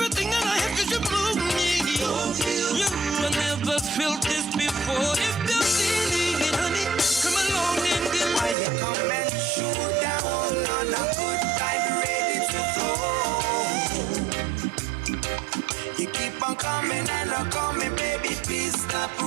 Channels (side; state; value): left; drops out; at 8.6 s